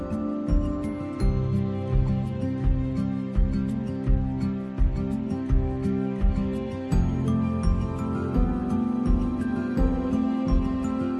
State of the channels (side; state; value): both; identical; correlation 1.00